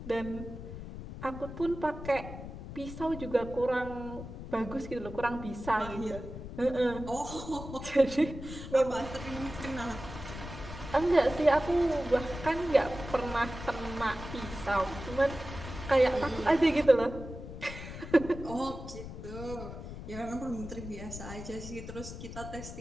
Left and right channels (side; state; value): left; noise; rumble, 10 dB below the sound